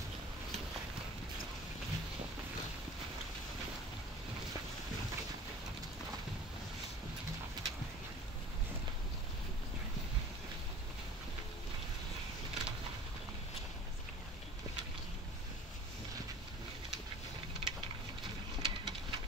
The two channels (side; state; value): both; normal; correlation 0.43